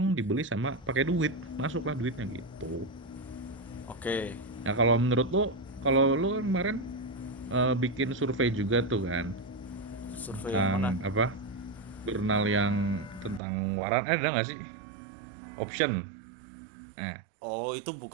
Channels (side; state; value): left; drops out; at 13.4 s